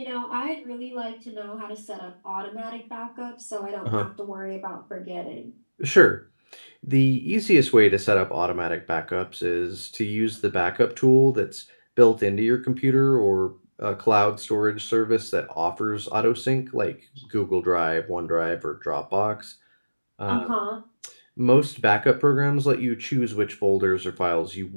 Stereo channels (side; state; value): both; inverted; correlation -1.00